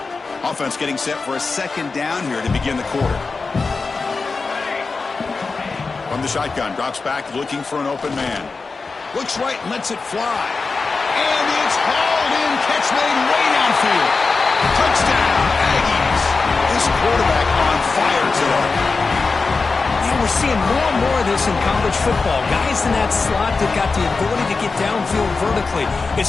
Offense getting set for a 2nd down here to begin the quarter. From the shotgun, drops back looking for an open man. Looks right and lets it fly. And it's hauled in, catch made way downfield. Touchdown, Aggies. This quarterback on fire today. Yeah, we're seeing more and more of this in college football. Guys in that slot that got the ability to get downfield vertically.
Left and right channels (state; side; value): quieter; right; 4.2 dB